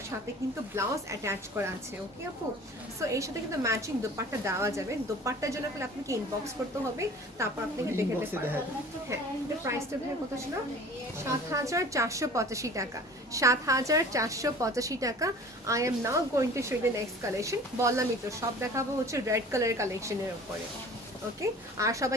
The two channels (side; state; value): both; normal; correlation 0.44